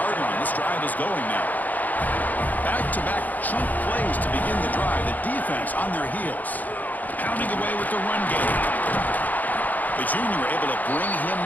line. This drive is going now. Back-to-back chunk plays to begin the drive. The defense on their heels. Pounding away with the run game. The junior able to bring him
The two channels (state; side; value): late; right; 0.081 ms